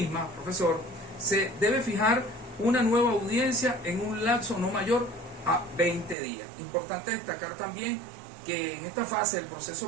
profesor, se debe fijar una nueva audiencia en un lapso no mayor a 20 días. Importante destacar también que en esta fase el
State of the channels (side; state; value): left; drops out; at 6.2 s